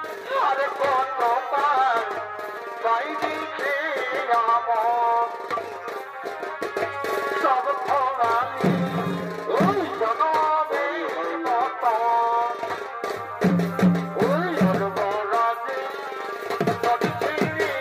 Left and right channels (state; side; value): identical; both; correlation 1.00